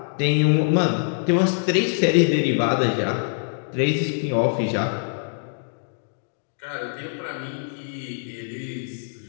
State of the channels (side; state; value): right; silent; digital silence